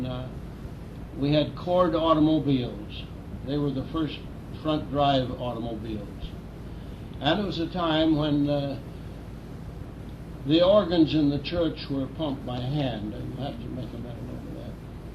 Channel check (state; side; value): identical; both; correlation 1.00